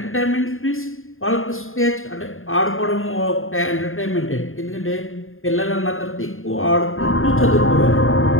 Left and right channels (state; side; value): late; right; 0.60 ms